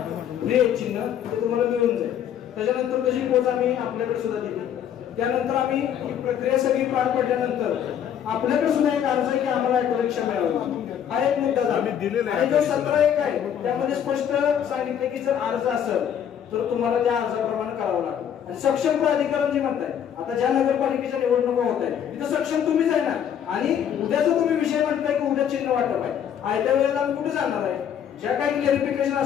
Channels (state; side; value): quieter; right; 9.2 dB